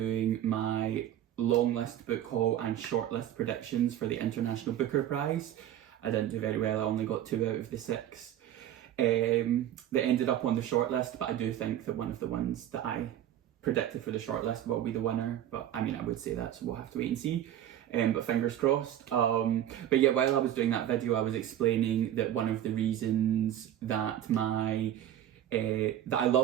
my long list book haul and short list predictions for the International Booker Prize, I didn't do very well. I only got 2 out of the 6 that ended up on the short list, but I do think that one of the ones that I predicted for the shortlist will be the winner, but I mean I would say that, so we'll have to wait and see, but fingers crossed. But yeah, while I was doing that video I was explaining that one of the reasons that that I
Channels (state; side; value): quieter; left; 11.4 dB